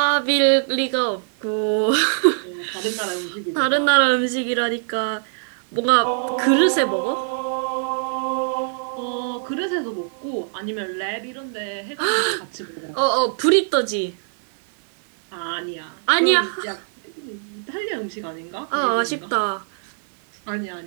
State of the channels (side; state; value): left; silent; digital silence